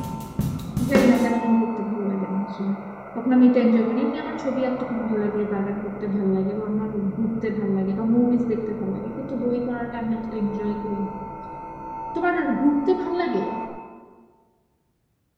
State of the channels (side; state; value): both; identical; correlation 1.00